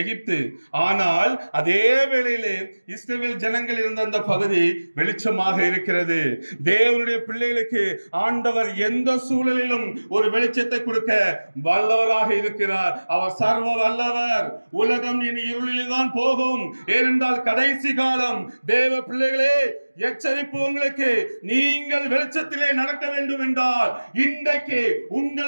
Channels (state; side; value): inverted; both; correlation -1.00